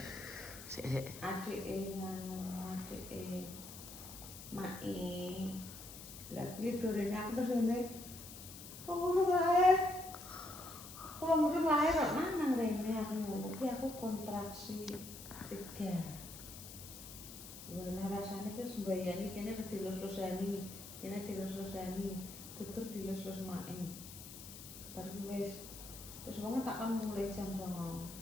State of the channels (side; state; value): left; noise; hiss, 13 dB below the sound